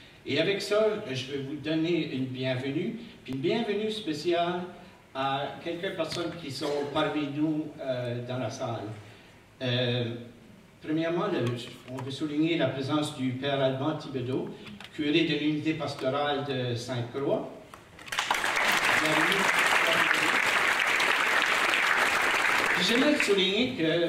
Et avec ça, je vais vous donner une bienvenue, puis une bienvenue spéciale à quelques personnes qui sont parmi nous dans la salle. Premièrement, on veut souligner la présence du Père Alban Thibodeau, curé de l'unité pastorale de Sainte-Croix. J'aimerais souligner que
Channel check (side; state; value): both; identical; correlation 1.00